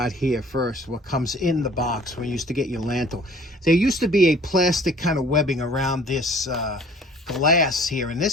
here first. What comes in the box when you used to get your lantern. There used to be a plastic kind of webbing around this glass here, and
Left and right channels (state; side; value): normal; both; correlation 0.52